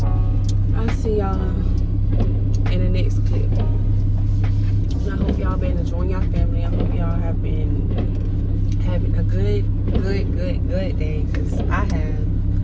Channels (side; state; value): both; identical; correlation 1.00